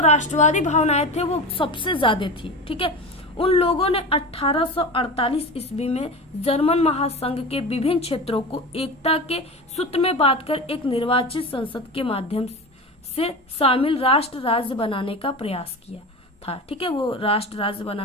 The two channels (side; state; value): both; normal; correlation 0.28